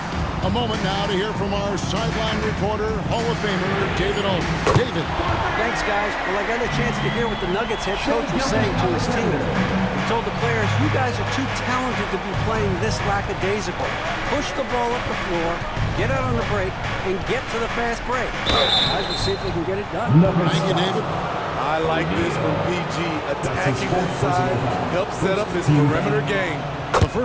A moment now to hear from our sideline reporter, Hall of Famer David Owen. David. Thanks, guys. Well, I got a chance to hear what the Nuggets head coach was saying to his team. He told the players, you guys are too talented to be playing this lackadaisical. Push the ball up the floor, get out on the break, and get to the fast break. Guys, we'll see if they can get it done. Thank you, David. I like this from PG. Attacking inside, help set up his perimeter game. The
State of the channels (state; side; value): identical; both; correlation 1.00